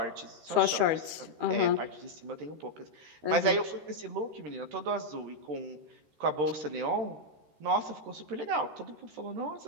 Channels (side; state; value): left; late; 13 ms